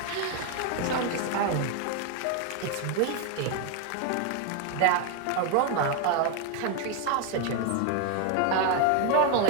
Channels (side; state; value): both; different; correlation 0.01